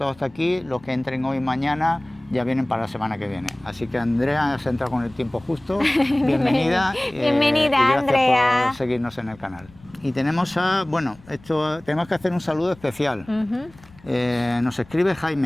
hasta aquí. Los que entren hoy y mañana ya vienen para la semana que viene. Así que Andrea se entra con el tiempo justo. Bienvenida. Bienvenida, y gracias Andrea. por seguirnos en el canal. Y tenemos tenemos que hacer un saludo especial. Nos escribe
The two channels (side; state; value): left; noise; rumble, 25 dB below the sound